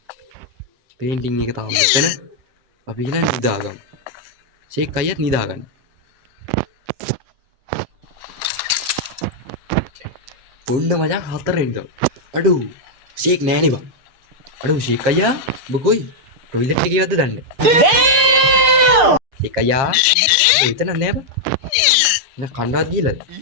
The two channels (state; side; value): late; left; 6.7 ms